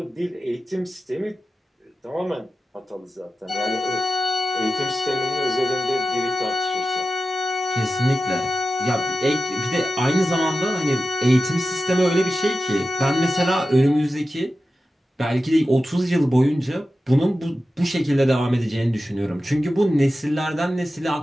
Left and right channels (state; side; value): normal; both; correlation 0.93